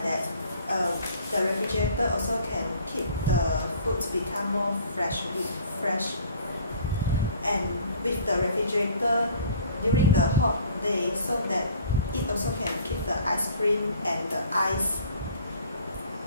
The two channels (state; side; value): inverted; both; correlation -0.51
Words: that, the refrigerator also can keep the foods become more fresh. And with the refrigerator during the hot day, so that it also can keep the ice cream and the ice